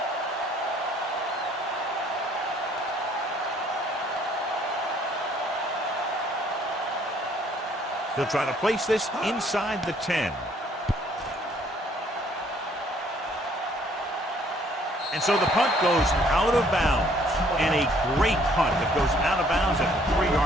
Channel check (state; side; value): normal; both; correlation 0.62